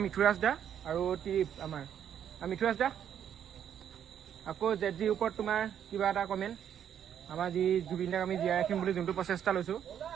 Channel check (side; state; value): left; quieter; 9.3 dB